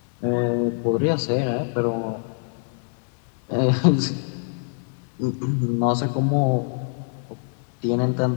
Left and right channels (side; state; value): right; silent; digital silence